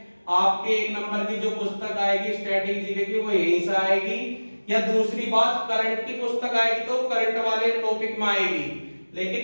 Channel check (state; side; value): inverted; both; correlation -1.00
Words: आपके एक नंबर की जो पुस्तक आएगी स्टैटिक जीके की वो यहीं से आएगी, या दूसरी बात करंट की पुस्तक आएगी तो करंट वाले टॉपिक में आएगी, लेकिन